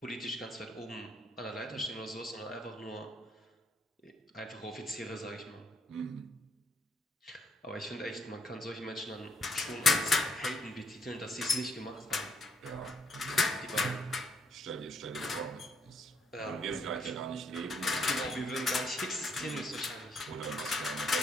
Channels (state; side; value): normal; both; correlation 0.71